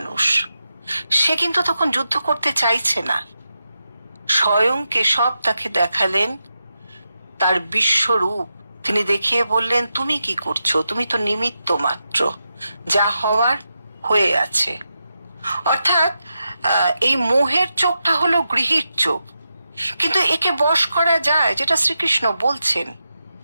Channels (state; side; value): inverted; both; correlation -0.88